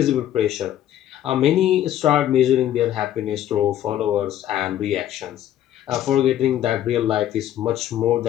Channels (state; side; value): quieter; right; 11.8 dB